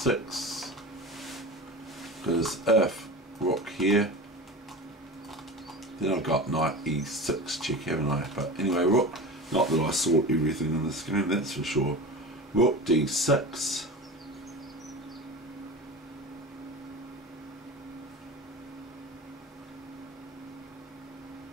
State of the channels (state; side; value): normal; both; correlation 0.30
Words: Because if Rook here, then I've got Knight E6 check, haven't I? But anyway, Rook, not that I sort everything in this game, that's for sure. Rook D6.